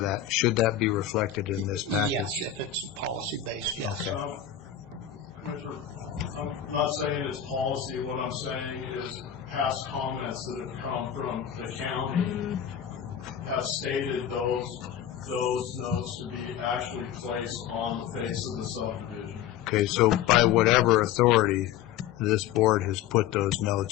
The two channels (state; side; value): quieter; right; 9.8 dB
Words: that. Should that be reflected in this package? Yes, if it's policy-based, yes. Commissioner, I'm not saying it's policy. What I'm saying is past comments that have come from the county have stated those notes to be actually placed on the face of the subdivision. Okay, so by whatever authority, this board has put those